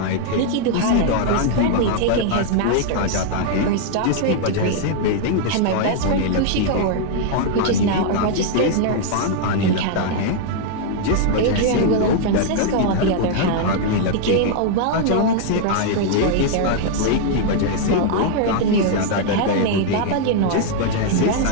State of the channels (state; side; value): different; both; correlation -0.01